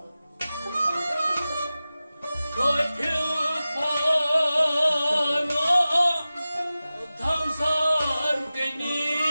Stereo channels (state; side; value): inverted; both; correlation -0.96